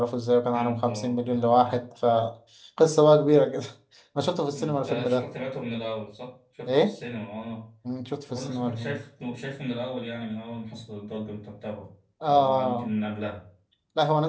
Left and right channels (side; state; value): both; identical; correlation 1.00